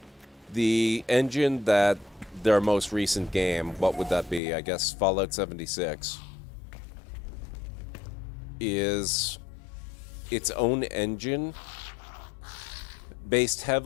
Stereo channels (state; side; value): drops out; right; at 4.4 s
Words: The engine that their most recent game, what would that be? I guess Fallout 76, is its own engine based